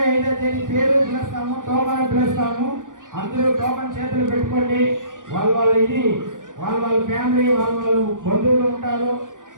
తేదీ పేరు పిలుస్తాము, టోకన్ పిలుస్తాము. అందరూ టోకన్ చేతులు పెట్టుకోండి. వాళ్ళ ఫ్యామిలీ వాళ్ళ బంధువులు ఉంటారు.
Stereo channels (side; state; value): left; late; 0.88 ms